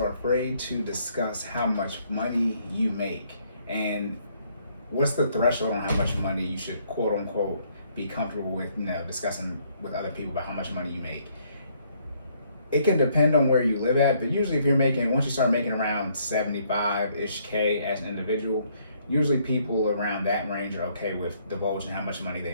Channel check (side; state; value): both; inverted; correlation -0.68